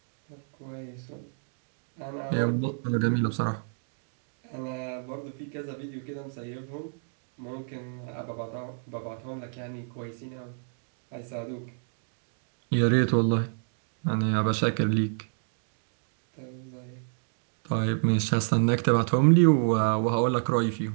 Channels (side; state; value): left; silent; digital silence